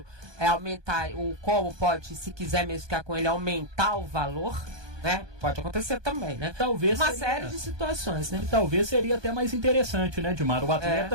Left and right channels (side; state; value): left; late; 1.2 ms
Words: aumentar, como pode, se quiser mesmo ficar com ele, aumentar o valor, né? Pode acontecer também, né? Talvez uma série de situações, né? E talvez seria até mais interessante, né, Dimar? O